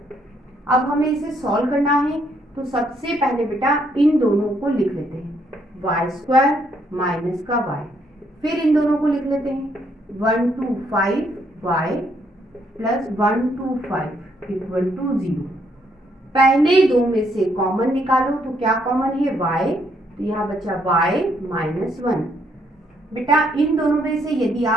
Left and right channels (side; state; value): both; normal; correlation 0.72